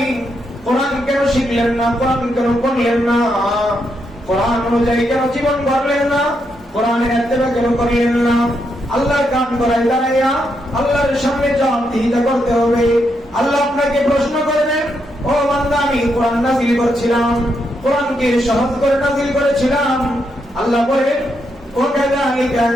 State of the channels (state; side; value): normal; both; correlation 0.80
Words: কোরআন কেন শিখলেন না, কোরআন কেন পড়লেন না, কোরআন অনুযায়ী কেন জীবন গড়লেন না, কোরআনের ইত্তেবা কেন করলেন না, আল্লাহর কান গলায় দাঁড়াইয়া আল্লাহর সামনে জবাবদিহিতা করতে হবে। আল্লাহ আপনাকে প্রশ্ন করবেন, ও বান্দা আমি কোরআন নাযিল করেছিলাম, কোরআনকে সহজ করে নাযিল করেছিলাম। আল্লাহ বলেন ওয়াকাযালিকা